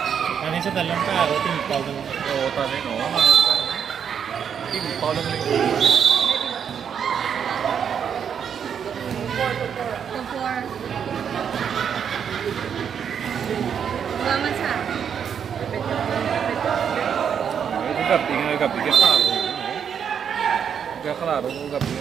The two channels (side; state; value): left; quieter; 7.8 dB